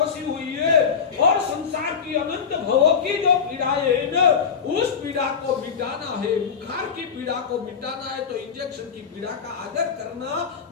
हुई है, और संसार की अनंत भवों की जो पीड़ाएं है ना, उस पीड़ा को मिटाना है, बुखार की पीड़ा को मिटाना है, तो इंजेक्शन की पीड़ा का आदर करना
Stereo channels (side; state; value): right; quieter; 6.5 dB